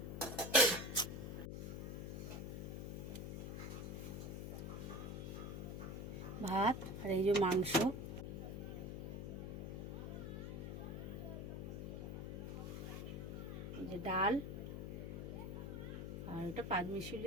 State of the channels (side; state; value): left; noise; hum, 5 dB below the sound